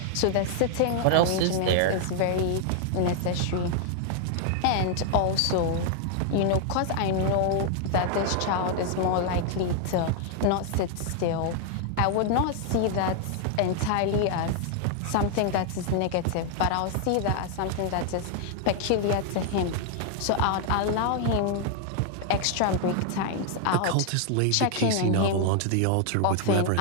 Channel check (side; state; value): both; different; correlation 0.00